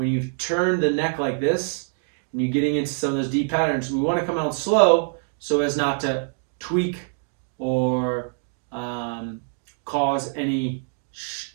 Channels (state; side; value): silent; left; 62 dB below the other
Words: you've turned the neck like this, and you're getting into some of those deep patterns, we want to come out slow so as not to tweak or cause any